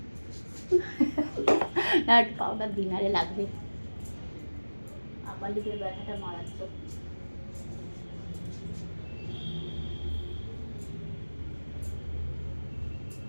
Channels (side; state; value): both; inverted; correlation -1.00